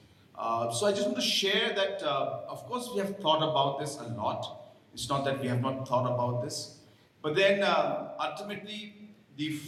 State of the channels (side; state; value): both; identical; correlation 1.00